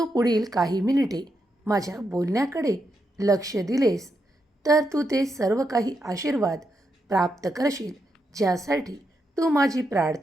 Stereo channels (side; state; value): both; normal; correlation 0.83